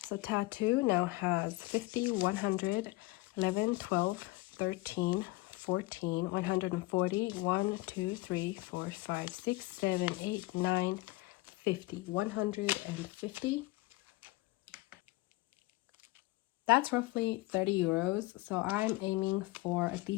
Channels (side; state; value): right; quieter; 21.4 dB